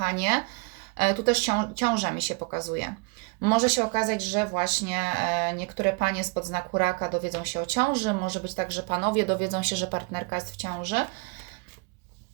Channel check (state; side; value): quieter; left; 28.6 dB